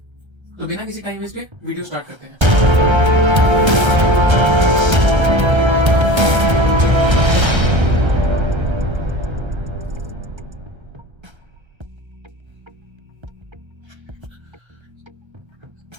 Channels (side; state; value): left; late; 1.3 ms